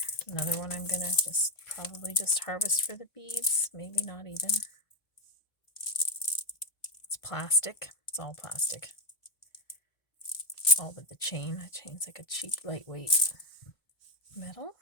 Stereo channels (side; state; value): right; late; 1.6 ms